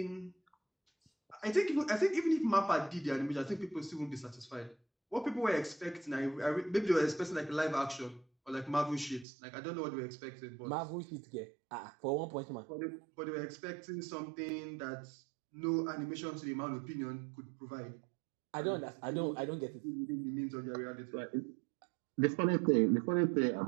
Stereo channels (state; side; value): drops out; left; at 9.2 s